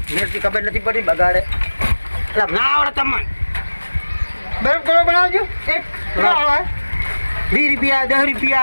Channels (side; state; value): both; inverted; correlation -1.00